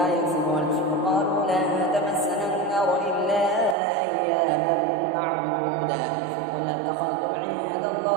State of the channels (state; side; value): drops out; left; at 3.8 s